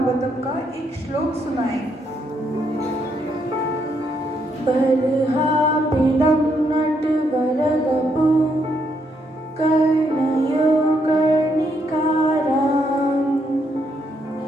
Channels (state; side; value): normal; both; correlation 0.75